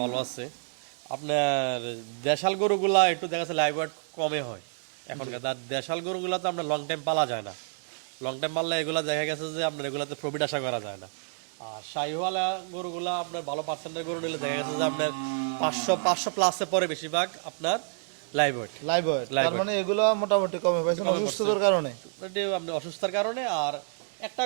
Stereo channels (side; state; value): left; silent; digital silence